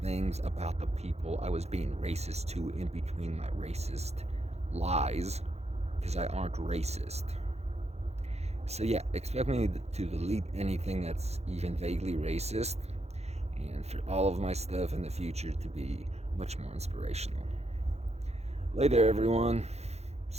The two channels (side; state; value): left; late; 0.31 ms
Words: things about the people I was being racist to in between my racist lies, because I aren't racist. So yeah, expect me to delete anything that's even vaguely racist, and for all of my stuff in the future to be much more inspirational. Later, everyone.